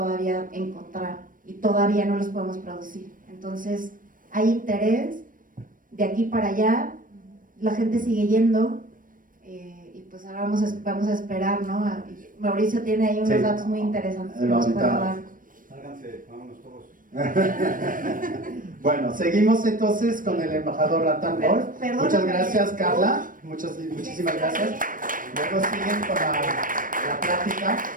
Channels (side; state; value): left; late; 0.40 ms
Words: encontrar y todavía no los podemos producir. Entonces hay interés de aquí para allá, la gente sigue yendo y pues ahora vamos a esperar, ¿no? Mauricio tiene ahí unos datos muy interesantes que nos puede dar. Sálganse, vámonos todos. Bueno, seguimos entonces con el embajador Nathan Wolf. Muchas gracias, Carla. Muchísimas gracias. Luego siguen con la plática.